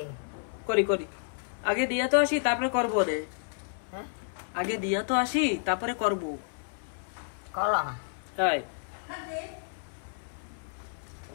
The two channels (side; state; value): right; silent; 57 dB below the other